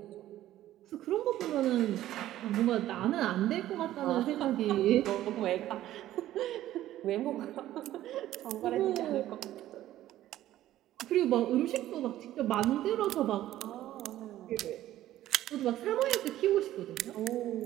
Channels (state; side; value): quieter; left; 13.7 dB